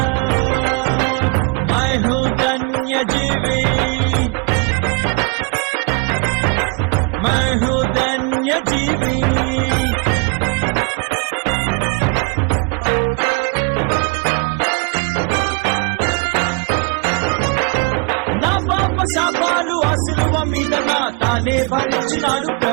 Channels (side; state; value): left; quieter; 30.7 dB